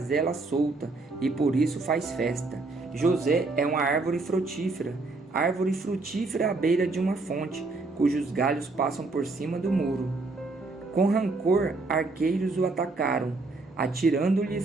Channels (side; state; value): left; quieter; 3.5 dB